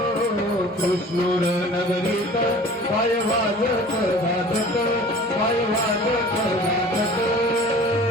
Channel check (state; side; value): normal; both; correlation 0.44